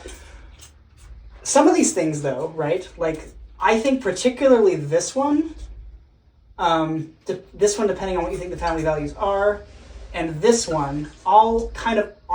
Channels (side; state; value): both; identical; correlation 1.00